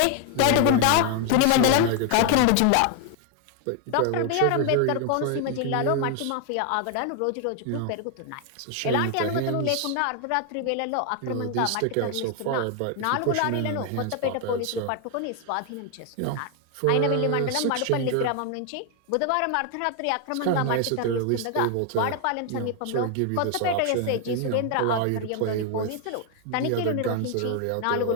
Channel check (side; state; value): both; different; correlation 0.00